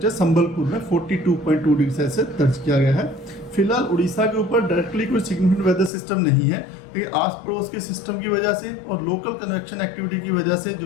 संबलपुर में 42.2 डिग्री सेल्सियस दर्ज किया गया है। फिलहाल उड़ीसा के ऊपर डायरेक्टली कोई सिग्निफिकेंट वेदर सिस्टम नहीं है, लेकिन आस पड़ोस के सिस्टम की वजह से और लोकल कन्वेक्शन एक्टिविटी की वजह से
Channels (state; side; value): drops out; right; at 5.9 s